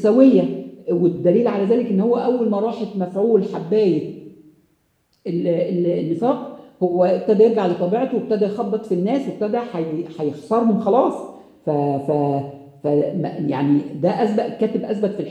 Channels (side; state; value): both; identical; correlation 1.00